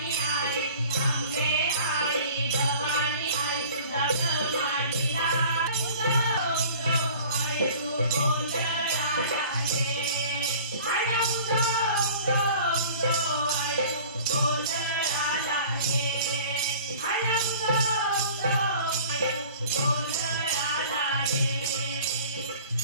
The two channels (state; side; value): inverted; both; correlation -0.45